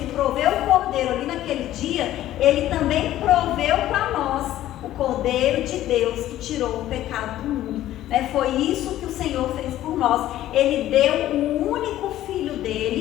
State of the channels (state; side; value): quieter; right; 13.6 dB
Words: proveu o cordeiro ali naquele dia, ele também proveu para nós o cordeiro de Deus que tirou o pecado do mundo. Foi isso que o Senhor fez por nós. Ele deu o único filho